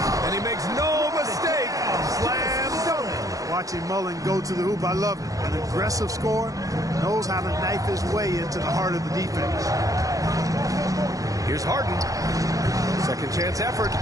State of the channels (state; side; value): late; left; 0.17 ms